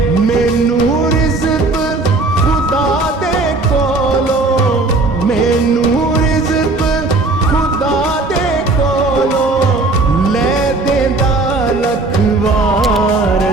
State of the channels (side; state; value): left; quieter; 3.2 dB